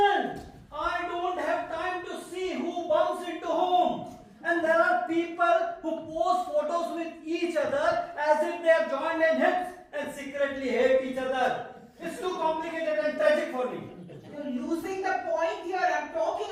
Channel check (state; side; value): identical; both; correlation 1.00